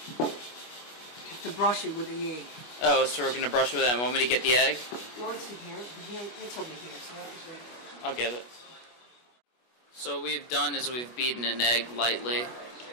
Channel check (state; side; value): late; right; 25 ms